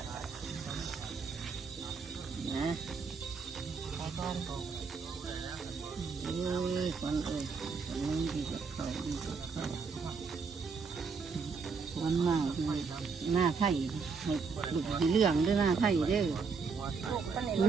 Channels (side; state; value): left; quieter; 5.1 dB